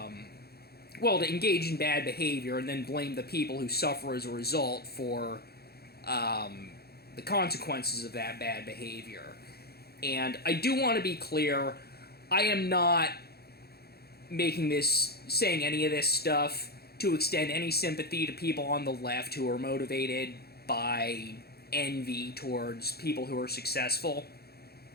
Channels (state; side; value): late; right; 0.46 ms